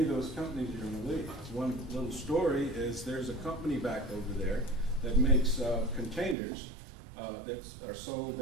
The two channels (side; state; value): left; drops out; at 6.4 s